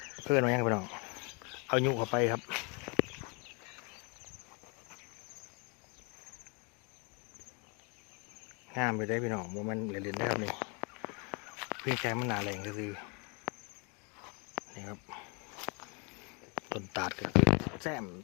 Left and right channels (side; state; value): right; quieter; 33.2 dB